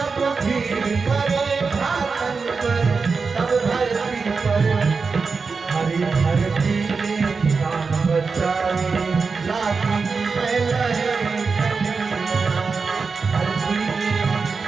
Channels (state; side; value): quieter; left; 4.8 dB